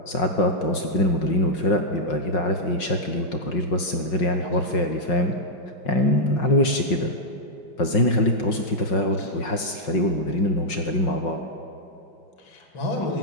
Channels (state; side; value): late; right; 5.5 ms